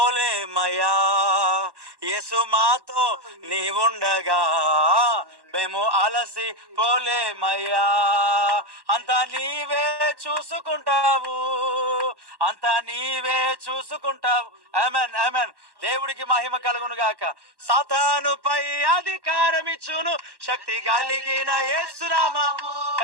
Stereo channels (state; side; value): late; left; 1.1 ms